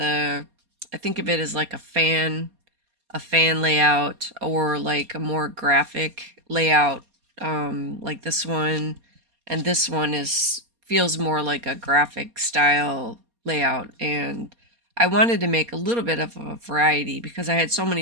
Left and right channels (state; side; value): late; left; 4.2 ms